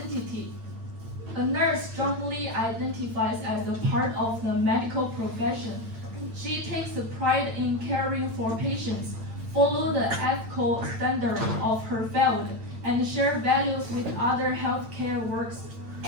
A nurse strongly identifies as a part of the medical profession. She takes pride in caring for patients, follow the ethical standards of her field, and share values with other healthcare workers.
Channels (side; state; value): left; late; 8.9 ms